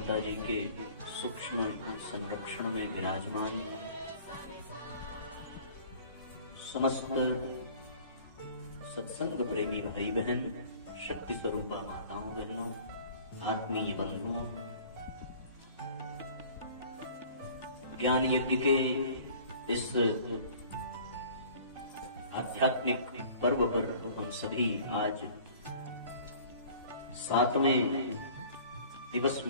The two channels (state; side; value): inverted; both; correlation -0.49